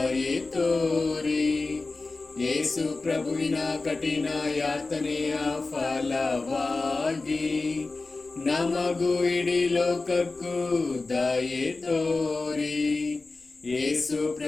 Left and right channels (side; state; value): right; quieter; 3.6 dB